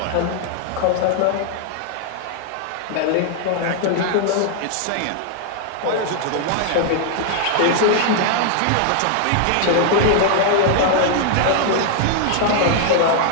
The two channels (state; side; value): different; both; correlation 0.00